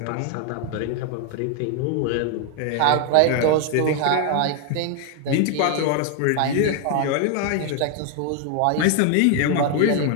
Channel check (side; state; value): both; different; correlation 0.00